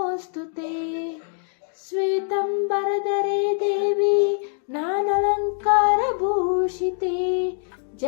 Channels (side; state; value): right; silent; 58 dB below the other